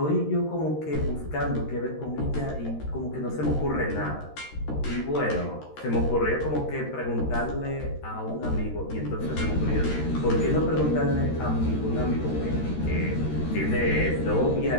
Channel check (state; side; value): late; right; 13 ms